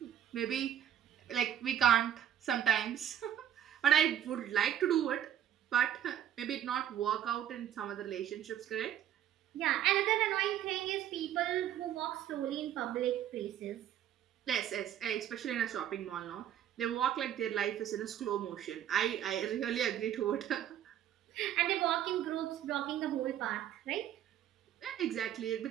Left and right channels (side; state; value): left; quieter; 10.5 dB